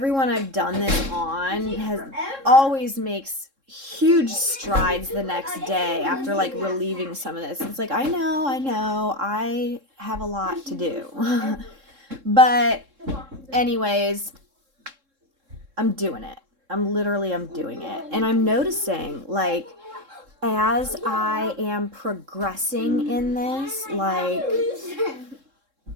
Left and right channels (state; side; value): late; left; 3.7 ms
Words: I've done this on has always makes huge strides the next day after like relieving some of this. It's like I know I have a lot to do. But anyways, I'm doing it. I'm doing it. And I'm noticing like as I am progressing in this, like